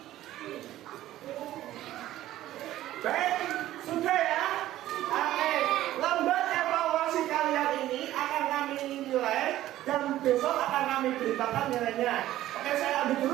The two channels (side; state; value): left; quieter; 14.2 dB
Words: Baik, sudah ya. Oke, lembar evaluasi kalian ini akan kami nilai dan besok akan kami beritakan nilainya. Oke, saya ambil